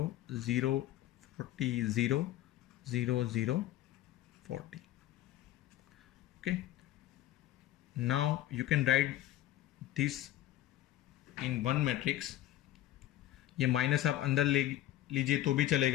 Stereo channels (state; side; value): quieter; right; 13.7 dB